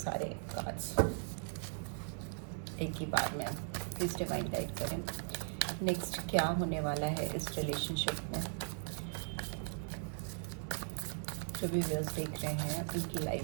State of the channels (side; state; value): left; silent; digital silence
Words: कार्ड्स एक ही बार में। प्लीज डिवाइन गाइड करें, नेक्स्ट क्या होने वाला है इस रिलेशनशिप में। जो भी व्यूअर्स देख रहे हैं उनकी